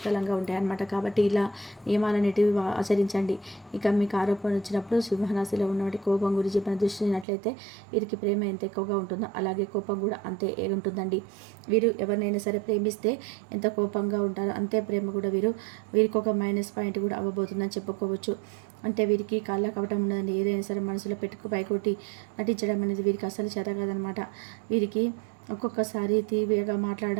ఉంటాయి అన్నమాట. కాబట్టి ఇలా నియమాలన్నిటివి ఆచరించండి. ఇక మీకు ఆరోపణ వచ్చినప్పుడు సింహరాశిలో ఉన్నటువంటి కోపం గురించి మనం దృష్టినట్లయితే వీరికి ప్రేమ ఎంత ఎక్కువగా ఉంటుందో అలాగే కోపం కూడా అంతే ఉంటుందండి. వీరు ఎవరినైనా సరే ప్రేమిస్తే ఎంత కోపంగా ఉంటారో అంతే ప్రేమ కూడా వీరికి ఒక మైనస్ పాయింట్ కూడా అవ్వబోతుందని చెప్పుకోవచ్చు. అంటే వీరికి కాళ్ళ కవటం ఉండదండి. ఏదైనా సరే మనసులో పైకొట్టి నటించడం అనేది వీరికి అసలు చేత కాదనమాట. వీరికి ఒక్కొక్కసారి తీవ్రంగా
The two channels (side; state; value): left; drops out; at 7.2 s